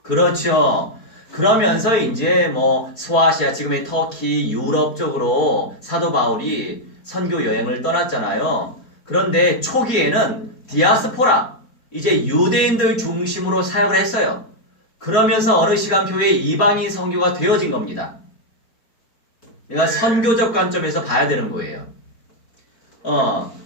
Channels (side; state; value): right; late; 4.5 ms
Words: 그렇죠. 그러면서 이제 소아시아, 지금의 터키, 유럽 쪽으로 사도 바울이 선교 여행을 떠났잖아요. 그런데 초기에는 디아스포라, 이제 유대인들 중심으로 사역을 했어요. 그러면서 어느 시간표에 이방인 선교가 되어진 겁니다. 내가 선교적 관점에서 봐야 되는 거예요.